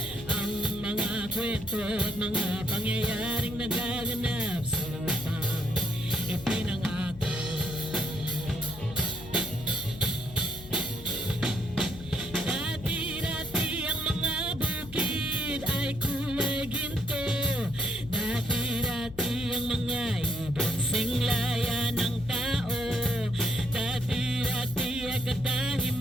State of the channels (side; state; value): left; noise; hum, 16 dB below the sound